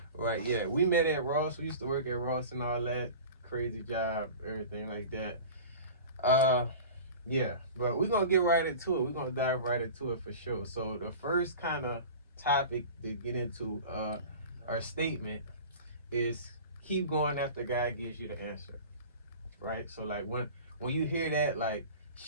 Right, yeah. We met at Ross. We used to work at Ross and all that. Crazy job, everything like that. Yeah, but we're gonna get right into it. We're gonna dive right into it for sure. So the first kind of topic to get into our statement is keep going after God gives you the answer. Right? So like when you hear that, like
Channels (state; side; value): inverted; both; correlation -0.37